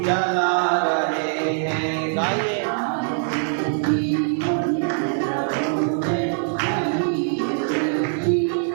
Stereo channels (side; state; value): left; silent; 56 dB below the other